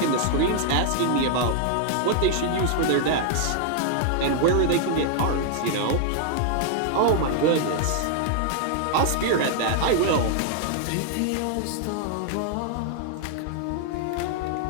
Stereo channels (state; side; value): different; both; correlation -0.01